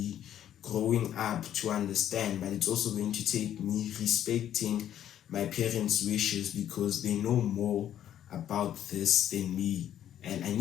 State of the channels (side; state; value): right; quieter; 10.8 dB